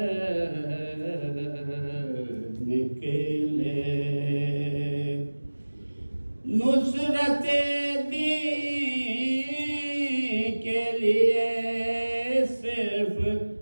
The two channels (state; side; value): inverted; both; correlation -1.00